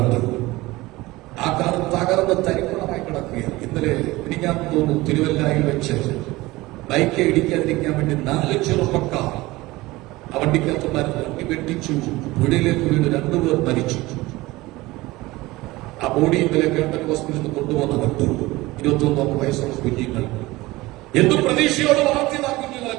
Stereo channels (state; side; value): quieter; left; 20.0 dB